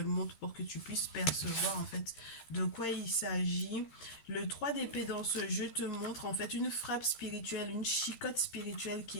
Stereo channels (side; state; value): right; late; 13 ms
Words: montre pour que tu puisses percevoir en fait de quoi il s'agit. Le 3 d'épée dans ce jeu te montre en fait une frappe spirituelle, une chicotte spirituelle